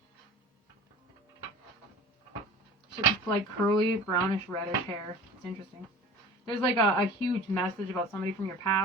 She's like curly, brownish, reddish hair. It's interesting. There's like a huge message about somebody from your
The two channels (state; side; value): normal; both; correlation 0.40